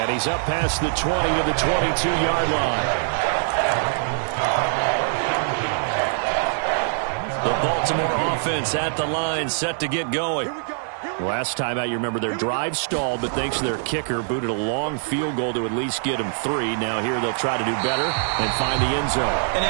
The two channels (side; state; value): left; silent; digital silence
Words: he's up past the 20 to the 22-yard line. The Baltimore offense at the line, set to get going. Last time out, you remember their drive stalled, but thanks to their kicker, booted a long field goal to at least get them 3. Now here they'll try to do better and find the end zone. And